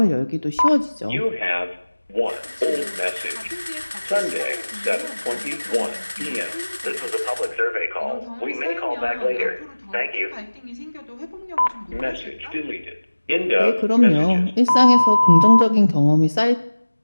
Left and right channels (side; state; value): both; inverted; correlation -1.00